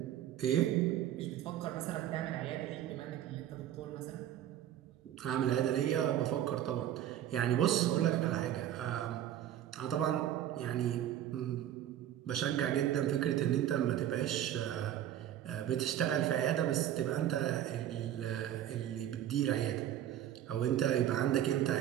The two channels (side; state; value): left; quieter; 11.5 dB